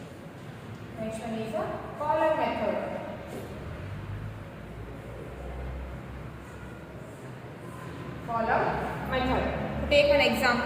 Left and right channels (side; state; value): both; identical; correlation 1.00